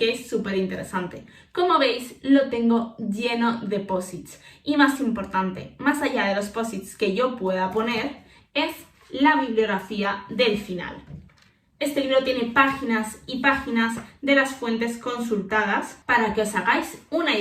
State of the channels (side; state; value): both; identical; correlation 1.00